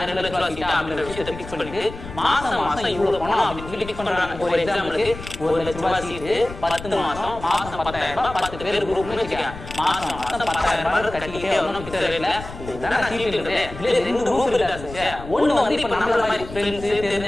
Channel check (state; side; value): noise; left; rumble, 13 dB below the sound